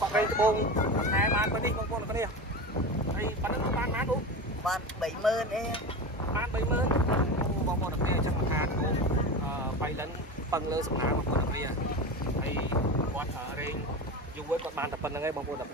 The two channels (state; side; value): normal; both; correlation 0.26